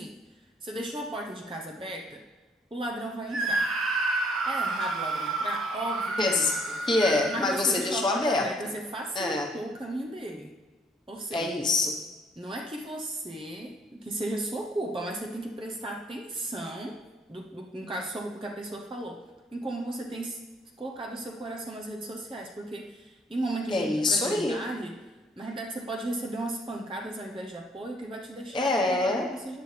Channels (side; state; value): both; normal; correlation 0.63